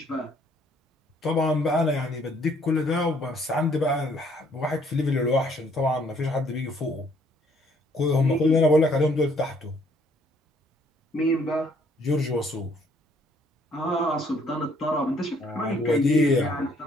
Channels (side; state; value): both; normal; correlation 0.64